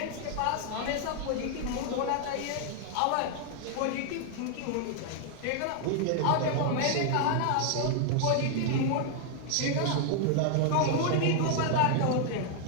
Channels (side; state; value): both; different; correlation 0.00